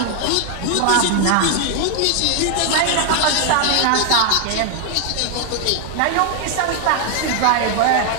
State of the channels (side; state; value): both; different; correlation 0.00